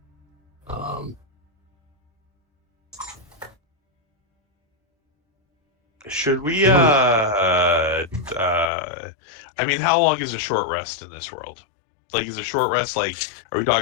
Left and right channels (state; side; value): drops out; right; at 8.7 s